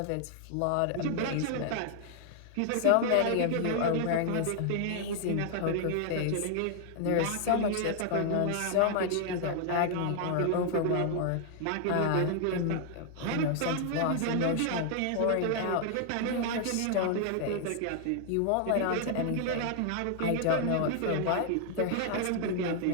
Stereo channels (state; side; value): different; both; correlation 0.00